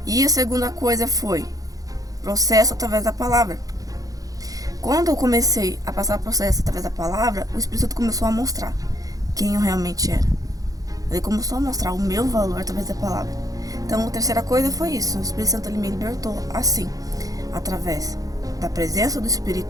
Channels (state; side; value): late; left; 0.17 ms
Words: E a segunda coisa foi processo através da palavra. Quando eu comecei a passar o processo através da palavra, o Espírito Santo começou a mostrar quem eu realmente era. Ele começou a mostrar o meu valor através da palavra. Então a terceira coisa foi isso. O Espírito Santo ele me libertou assim, através da presença do